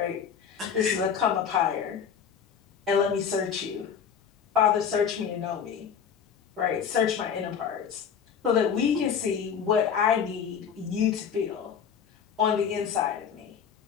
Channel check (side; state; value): right; quieter; 7.4 dB